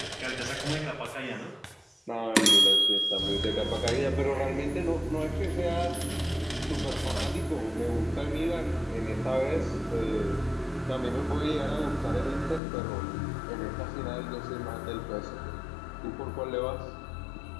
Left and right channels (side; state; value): right; drops out; at 12.6 s